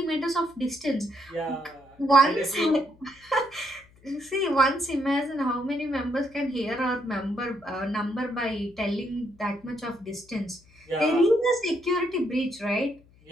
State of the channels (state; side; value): noise; left; hum, 28 dB below the sound